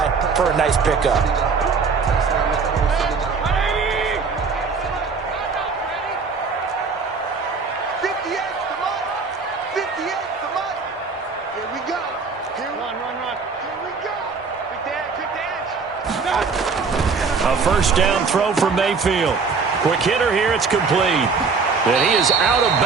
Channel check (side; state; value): left; quieter; 5.0 dB